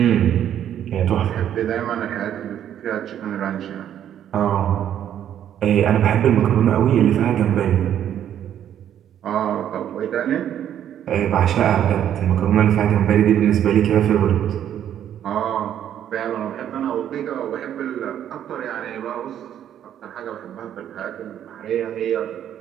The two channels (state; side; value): quieter; left; 10.3 dB